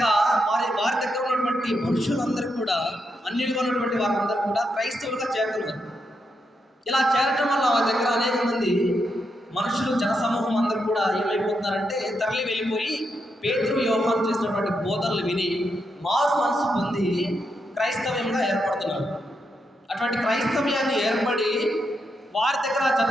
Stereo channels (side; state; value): both; normal; correlation 0.82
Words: వారి దగ్గర ఉన్నటువంటి మనుషులందరూ కూడా, అన్యులుగా ఉన్నటువంటి వారందరూ కూడా క్రైస్తవులుగా చేరుతున్నారు. ఇలా చేరటం వల్ల వారి దగ్గర అనేక మంది మనుషులు, జనసమూహం అందరూ కూడా ఏమైపోతున్నారంటే తరలి వెళ్ళిపోయి పేతురు యోహాను చేసినటువంటి బోధనలు విని మారు మనసు పొంది క్రైస్తవ్యంగా ఏర్పడుతున్నారు. అటువంటి క్రైస్తవ్యాన్ని ఏర్పడి వారి దగ్గర